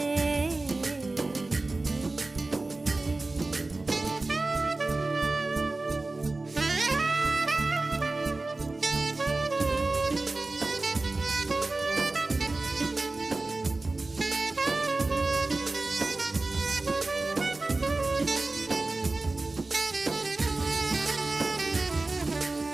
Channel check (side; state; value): left; quieter; 3.2 dB